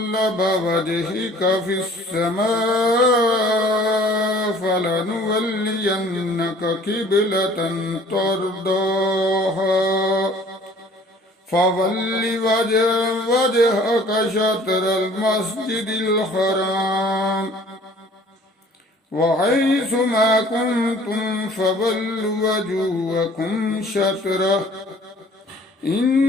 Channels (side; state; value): both; normal; correlation 0.52